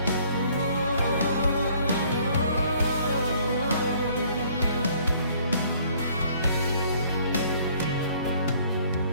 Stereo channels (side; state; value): both; inverted; correlation -0.59